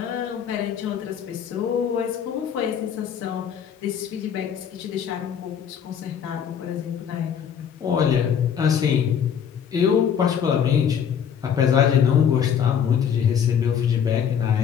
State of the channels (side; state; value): right; quieter; 8.1 dB